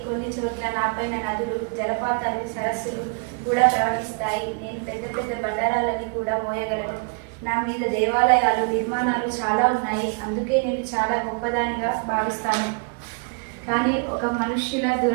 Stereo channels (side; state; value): left; quieter; 36.6 dB